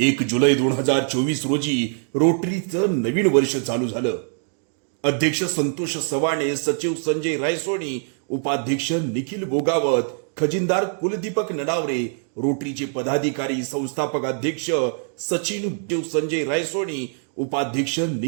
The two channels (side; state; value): left; silent; 63 dB below the other